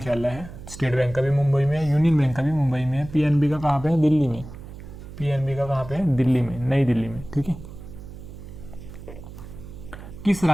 है। स्टेट बैंक का भी मुंबई में है, यूनियन बैंक का भी मुंबई में है, पीएनबी का कहाँ पे है? दिल्ली में। नई दिल्ली में, ठीक है। किस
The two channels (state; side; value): noise; right; hum, 14 dB below the sound